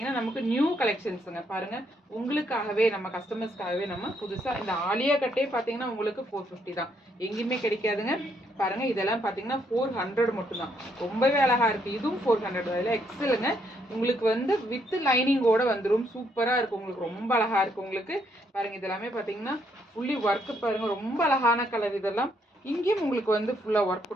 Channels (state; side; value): normal; both; correlation 0.73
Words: நமக்கு நியூ கலெக்ஷன்ஸுங்க. பாருங்கள், உங்களுக்காகவே நம்ம கஸ்டமர்ஸ்க்காகவே நம்ம புதுசாக இந்த ஆலியா கட்டே பார்த்தீங்கன்னா உங்களுக்கு 450 தான், எங்கேயுமே கிடைக்காதுங்க. பாருங்கள், இதெல்லாம் பார்த்தீங்கன்னா 400 மட்டும்தான். ரொம்பவே அழகாக இருக்குது. இதுவும் 400 அதில் எக்ஸலுங்க. உங்களுக்கு வந்து வித் லைனிங்கோட வந்துடும். சூப்பராக இருக்கும் உங்களுக்கு, ரொம்ப அழகாக இருக்குது உங்களுக்கு. பாருங்கள், இதெல்லாமே பார்த்தீங்கன்னா ஃபுல்லி ஒர்க்கு. பாருங்கள், ரொம்ப அழகான கலர். இதெல்லாம் இங்கேயும் உங்களுக்கு வந்து ஃபுல்லாக ஒர்க்